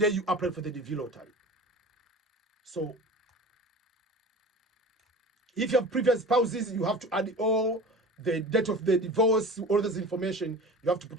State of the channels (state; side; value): normal; both; correlation 0.37